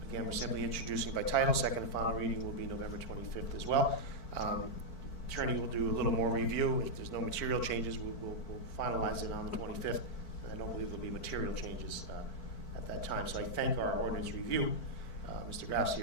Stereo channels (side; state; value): right; late; 4.5 ms